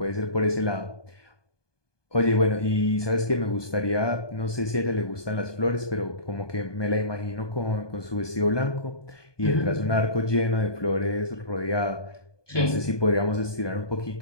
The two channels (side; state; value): right; late; 1.2 ms